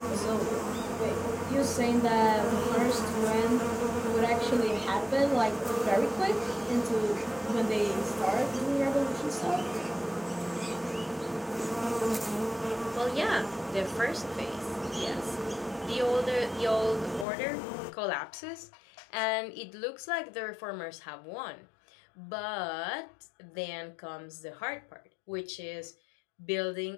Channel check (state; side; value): drops out; right; at 17.2 s